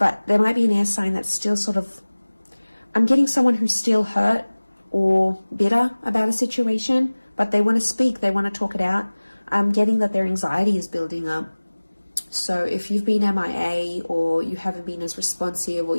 there might be an air sign that's still sort of... I'm getting someone who's still hurt or bitter about a situation, but they want to speak. They want to talk it out. I'm getting that their anxiety is building up. So if you've been MIA, or you haven't been as responsive, or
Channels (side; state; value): both; inverted; correlation -1.00